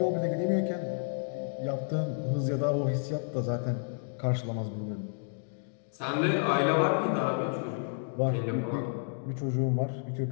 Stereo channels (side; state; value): right; silent; digital silence